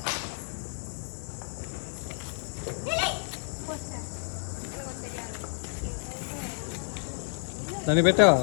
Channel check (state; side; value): silent; right; 58 dB below the other